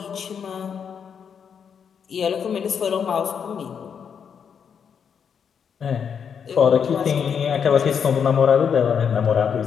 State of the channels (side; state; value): right; quieter; 7.2 dB